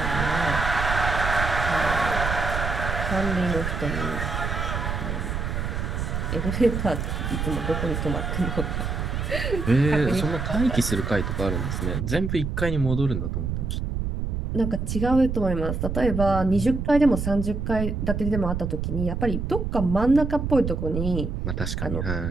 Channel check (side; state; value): right; noise; rumble, 2 dB below the sound